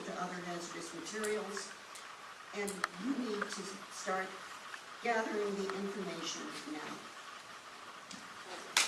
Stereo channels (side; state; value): both; identical; correlation 1.00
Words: other hazardous materials. And you need to start gathering the information now.